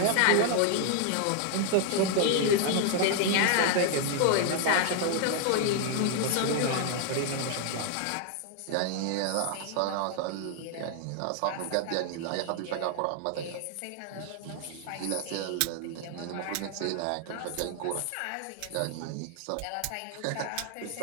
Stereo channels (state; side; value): different; both; correlation 0.00